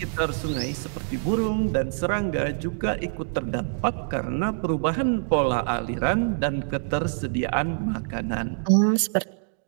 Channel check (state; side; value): silent; left; digital silence